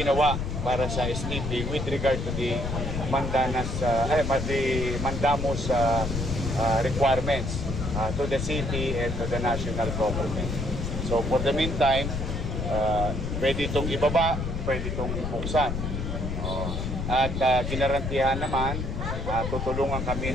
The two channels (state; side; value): noise; left; rumble, 3 dB below the sound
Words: para sa STP with regard to the mandamus requirements to the city and to the national government. So for the meantime, pwede itong ibaba, pwede itong buksan. At ginarantihan naman, tutulungan kami